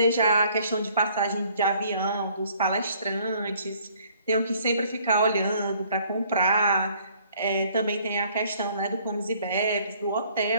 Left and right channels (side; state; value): both; inverted; correlation -0.60